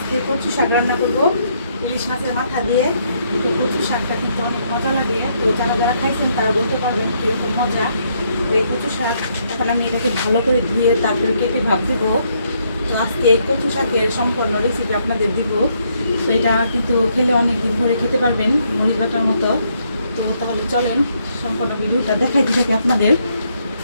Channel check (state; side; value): inverted; both; correlation -0.73